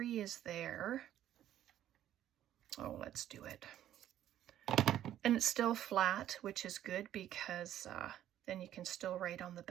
is there. Oh, let's do it. And it's still flat, which is good because then you can still write on the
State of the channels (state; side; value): quieter; left; 11.8 dB